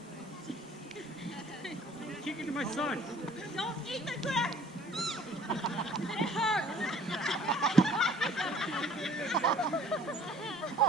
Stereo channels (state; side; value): normal; both; correlation 0.53